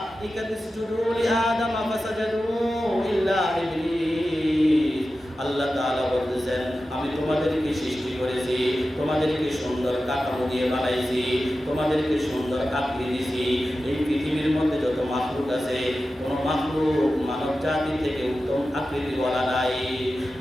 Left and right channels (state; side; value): normal; both; correlation 0.93